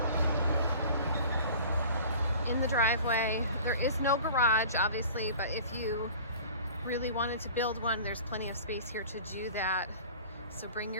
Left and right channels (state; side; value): inverted; both; correlation -0.43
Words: In the driveway. There is no garage, obviously, but if you really wanted to build one, there's plenty of space here to do that. So bring